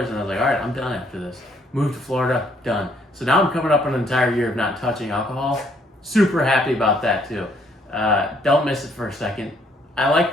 and I was like, all right, I'm done after this. Moved to Florida, done. So now I'm coming up on an entire year of not touching alcohol. Super happy about that too. Don't miss it for a second. I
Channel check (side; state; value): both; normal; correlation 0.67